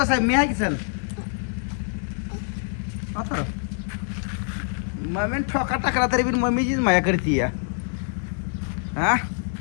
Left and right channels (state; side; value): silent; right; 62 dB below the other